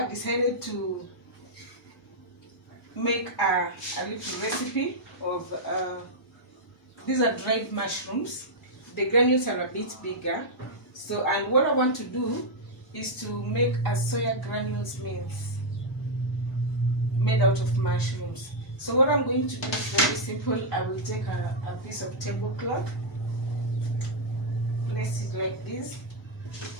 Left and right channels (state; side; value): normal; both; correlation -0.05